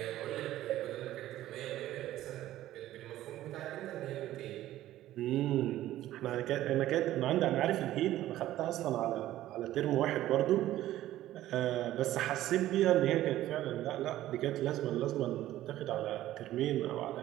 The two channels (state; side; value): quieter; left; 14.2 dB